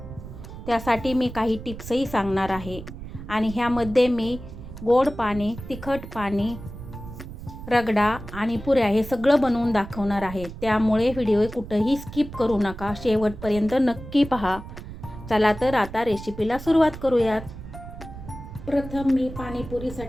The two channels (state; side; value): noise; right; rumble, 12 dB below the sound